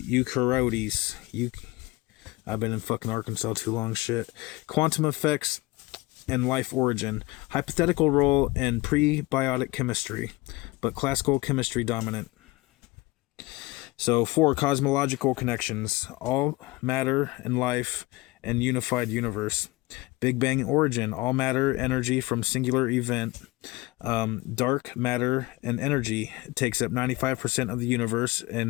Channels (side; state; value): right; quieter; 21.0 dB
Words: I've been in fucking Arkansas too long, shit. Quantum effects and life origin. Hypothetical role in prebiotic chemistry, but classical chemistry dominant. So 4, cosmological connections. All matter and life and unified universe. Big Bang origin. All matter, energy from singular event. Dark matter and energy takes up 95% of the universe